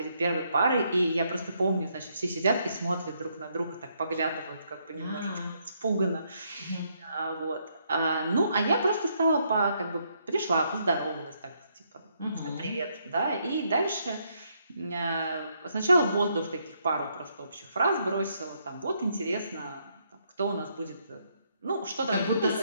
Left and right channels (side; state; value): both; inverted; correlation -0.74